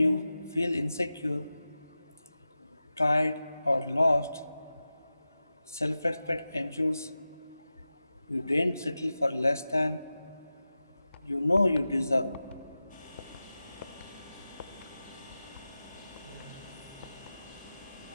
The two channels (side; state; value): both; inverted; correlation -0.94